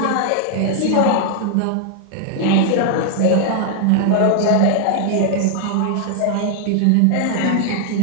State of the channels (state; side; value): different; both; correlation 0.00